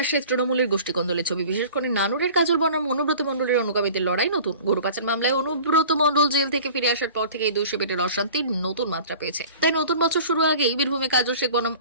আসে তৃণমূলের গোষ্ঠীকন্দলের ছবি। বিশেষ করে নানুরের কাজল বনাম অনুব্রত মণ্ডলের অনুগামীদের লড়াই নতুন। গরু পাচার মামলায় অনুব্রত মণ্ডল জেল থেকে ফিরে আসার পর থেকে এই দুই শিবিরের অশান্তির নতুন মাত্রা পেয়েছে। তাই নতুন বছর শুরু আগেই বীরভূমে কাজল শেখ বনাম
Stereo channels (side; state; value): both; inverted; correlation -0.43